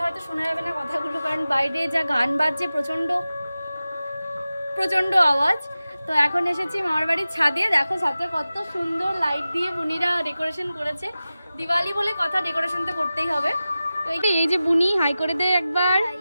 হয়তো শোনা যাবে না কথাগুলো, কারণ বাইরে যা গান বাজছে প্রচণ্ড প্রচণ্ড আওয়াজ। তো এখন এসেছি মামার বাড়ির ছাদে। দেখো ছাদটা কত সুন্দর লাইট দিয়ে বুনিরা ডেকোরেশন করেছে। দিওয়ালি বলে কথা, ডেকোরেশন তো করতেই হবে। তো এই যে বুনি হাই করে দে একবার।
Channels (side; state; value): both; inverted; correlation -0.95